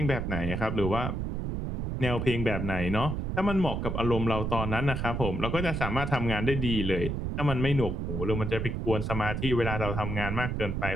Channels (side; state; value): right; noise; rumble, 2 dB below the sound